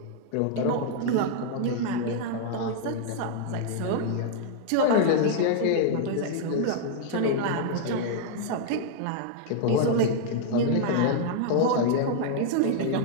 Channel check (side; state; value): both; different; correlation 0.00